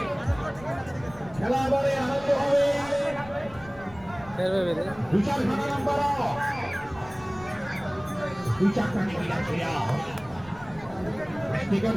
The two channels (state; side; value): noise; left; rumble, 20 dB below the sound